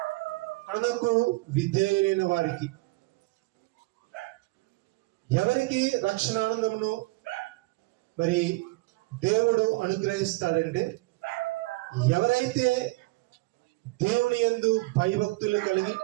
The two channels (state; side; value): quieter; left; 22.7 dB